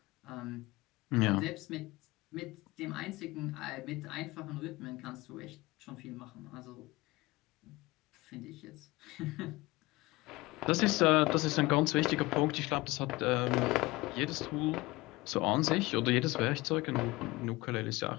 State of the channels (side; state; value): right; quieter; 21.3 dB